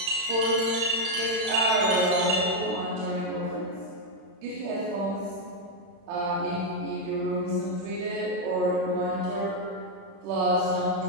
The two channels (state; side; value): late; left; 35 ms